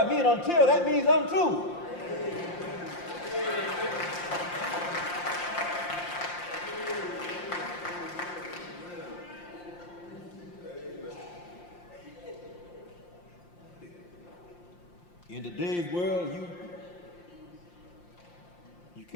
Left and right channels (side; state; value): right; late; 5.7 ms